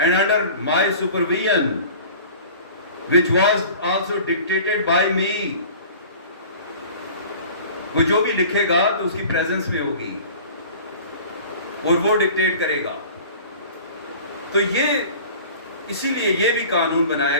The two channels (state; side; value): inverted; both; correlation -0.43